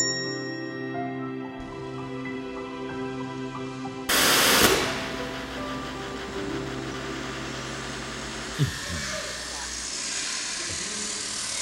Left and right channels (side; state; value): both; identical; correlation 1.00